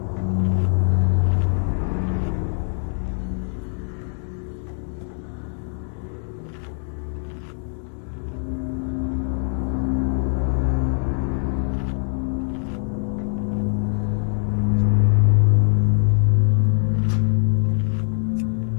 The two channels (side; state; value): right; silent; digital silence